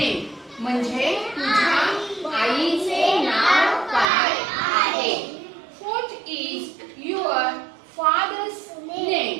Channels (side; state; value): left; drops out; at 4.1 s